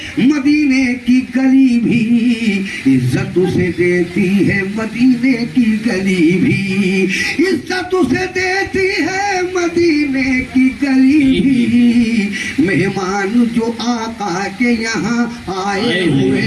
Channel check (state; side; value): identical; both; correlation 1.00